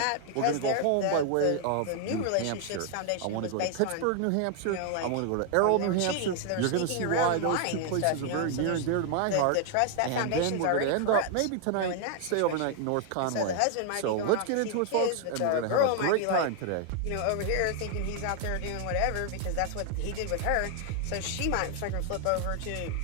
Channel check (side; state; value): both; different; correlation 0.00